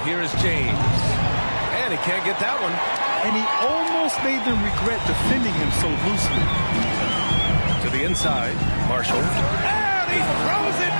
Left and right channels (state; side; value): inverted; both; correlation -1.00